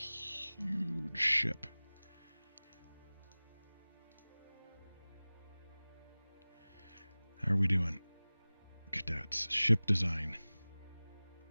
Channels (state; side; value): inverted; both; correlation -0.99